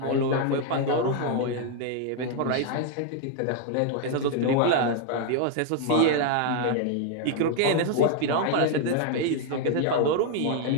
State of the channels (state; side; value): different; both; correlation 0.00